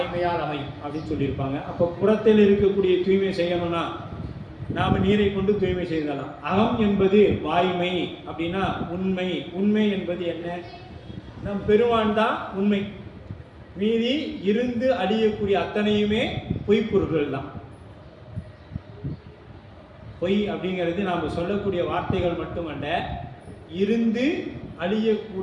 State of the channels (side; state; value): both; identical; correlation 1.00